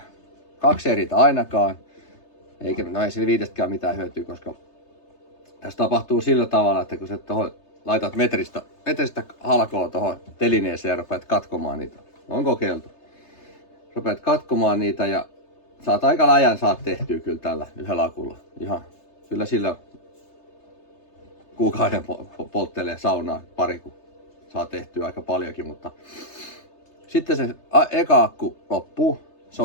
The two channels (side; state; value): right; late; 3.3 ms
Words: 2 ei riitä ainakaan. No ei sillä 5:stäkään mitään hyötyä, koska tässä tapahtuu sillä tavalla, että kun sä laitat metristä halkoa tuohon telineeseen ja rupeat katkomaan niitä. On kokeiltu. Rupeat katkomaan niitä ja saat aika läjän tehtyä kyllä tällä yhdellä akulla. Ihan kyllä sillä kuukauden polttelee saunaa pari, kun saa tehtyä aika paljonkin, mutta sitten se eka akku loppuu, se